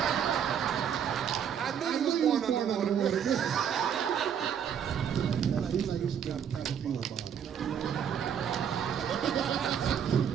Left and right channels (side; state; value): left; quieter; 8.3 dB